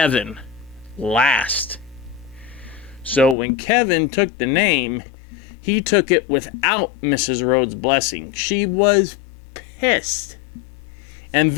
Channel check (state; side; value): drops out; right; at 3.4 s